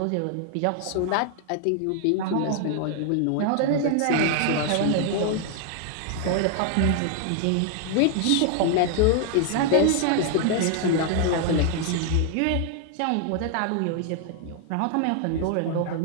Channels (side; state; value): both; different; correlation 0.00